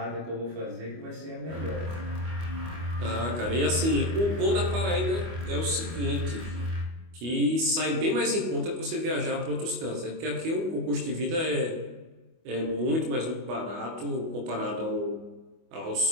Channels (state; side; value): late; left; 25 ms